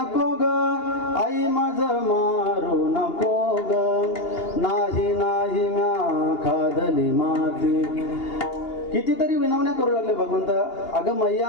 ग, आई माझं मारू नको ग, नाही म्या खादली माती. कितीतरी विनवण्या करू लागले भगवंत. अगं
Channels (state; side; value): late; right; 2.8 ms